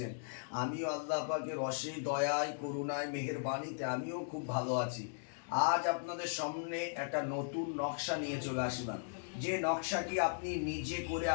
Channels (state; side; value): silent; right; digital silence